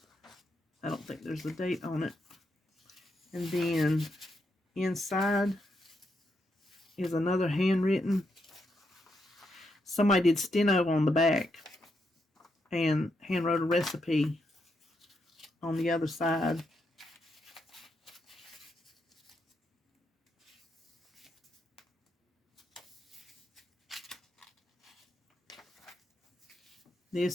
I don't think there's a date on it. And then inside is another handwritten. Somebody did steno on the back and hand wrote a recipe on the other side.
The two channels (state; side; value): normal; both; correlation 0.81